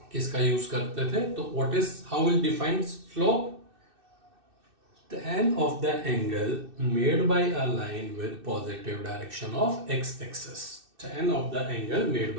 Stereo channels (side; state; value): left; late; 2.6 ms